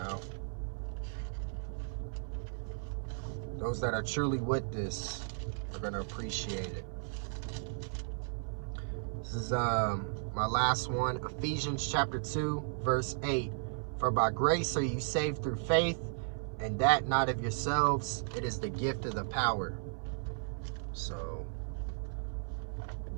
Those that are truly with this are going to appreciate it. This is my last one, Ephesians chapter 2, verse 8. For by grace are you saved through faith, and that not of yourselves, it is the gift of the power. So,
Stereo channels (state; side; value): silent; left; 54 dB below the other